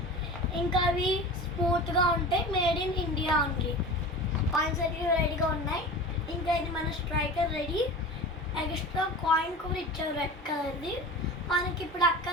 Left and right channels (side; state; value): both; normal; correlation 0.33